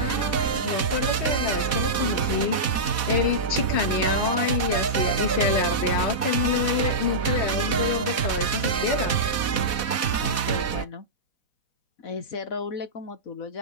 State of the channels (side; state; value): right; late; 4.1 ms